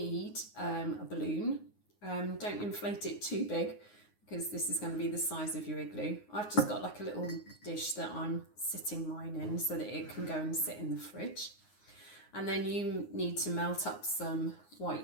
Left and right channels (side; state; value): right; late; 9.6 ms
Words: a balloon. Don't inflate it too big because this is going to be the size of your igloo. I've just got like a little dish that I'm sitting mine in so that it can go and sit in the fridge. And then you need to melt up some